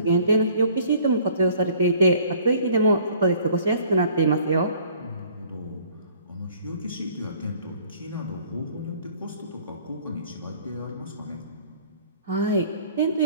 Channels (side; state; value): both; inverted; correlation -0.55